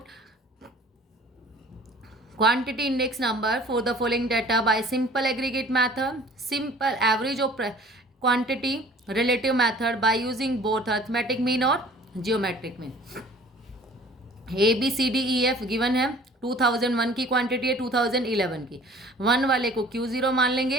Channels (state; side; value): normal; both; correlation 0.50